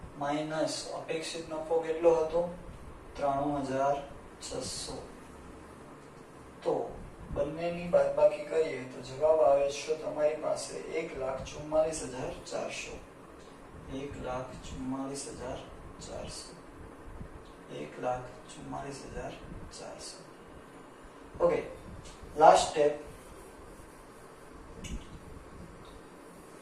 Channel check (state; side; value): identical; both; correlation 1.00